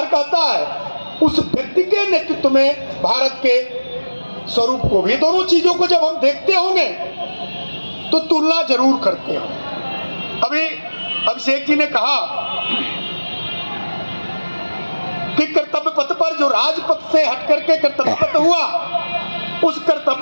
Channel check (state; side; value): inverted; both; correlation -1.00